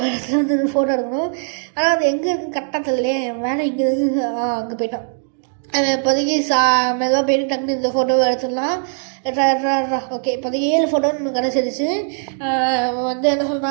இடத்துல வந்து ஃபோட்டோ எடுக்கணும். ஆனால் அது எங்கே இருக்குன்னு கரெக்டாக தெரியலையே. வேலை இங்கே இருக்குது. அங்கே போயிட்டான். இப்போதைக்கு மெதுவாக போயிட்டு டக்குனு இந்த ஃபோட்டோவை எடுத்துடலாம். ஓகே, இப்போதைக்கு 7 ஃபோட்டோன்னு கிடச்சிருச்சு. வந்து என்ன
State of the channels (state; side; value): silent; left; 56 dB below the other